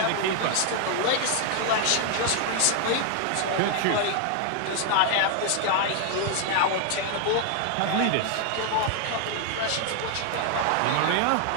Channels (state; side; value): different; both; correlation 0.00